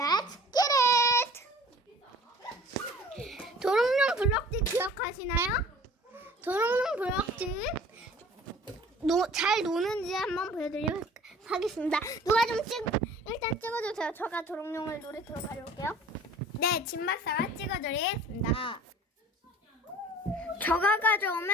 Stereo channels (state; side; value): normal; both; correlation 0.47